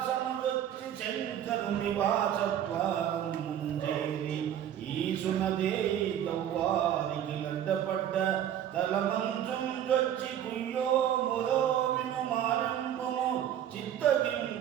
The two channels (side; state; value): left; quieter; 10.3 dB